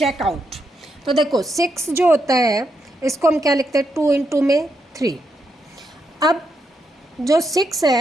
आउट। तो देखो 6 जो होता है इसको हम क्या लिखते हैं, 2 इंटू में 3। अब जो 6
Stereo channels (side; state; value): both; normal; correlation 0.81